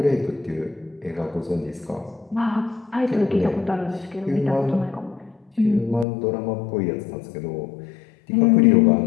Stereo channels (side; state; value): right; drops out; at 6.1 s